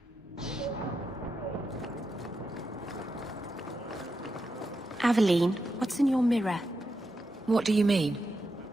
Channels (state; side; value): normal; both; correlation 0.86